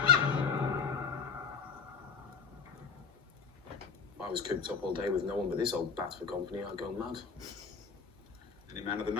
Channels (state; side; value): quieter; right; 5.8 dB